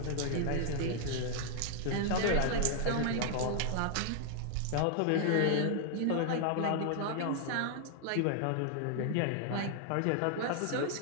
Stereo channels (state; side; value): different; both; correlation 0.00